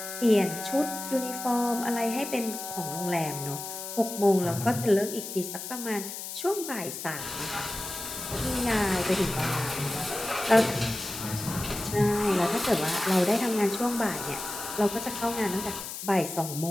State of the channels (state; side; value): noise; left; hiss, 8 dB below the sound